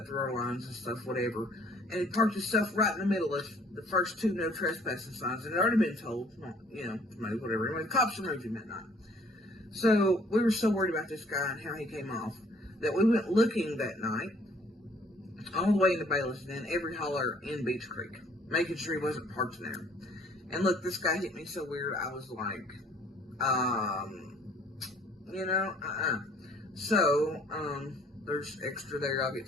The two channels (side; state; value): both; normal; correlation 0.58